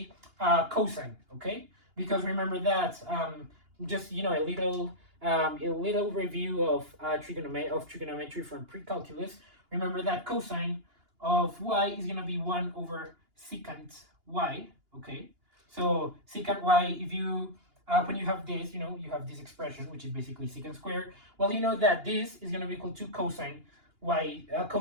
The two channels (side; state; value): left; late; 2.8 ms